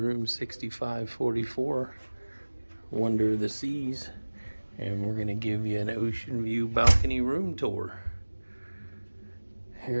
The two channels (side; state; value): both; inverted; correlation -1.00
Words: 6544, Wonder of the Seas, and we're gonna give you an ocean view balcony room tour.